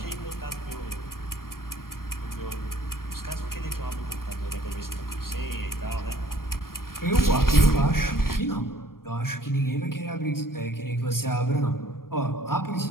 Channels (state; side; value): late; right; 0.92 ms